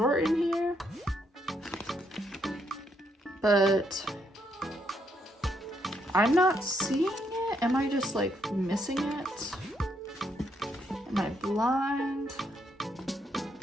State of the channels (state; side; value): normal; both; correlation 0.75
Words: in here. But I'm not seeing it. Am I just like missing it? Am I blind?